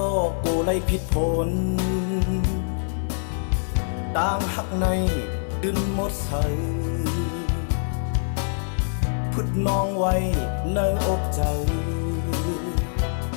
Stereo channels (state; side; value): silent; right; digital silence